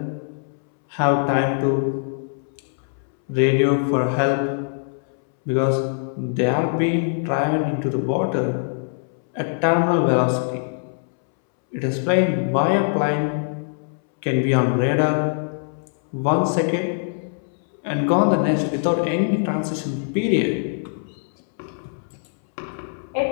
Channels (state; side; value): silent; right; 64 dB below the other